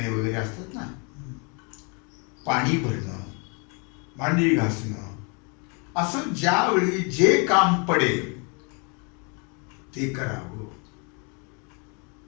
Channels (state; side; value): quieter; right; 34.1 dB